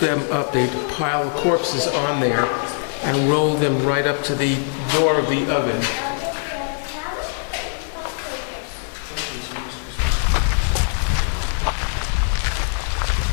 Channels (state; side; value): silent; right; 64 dB below the other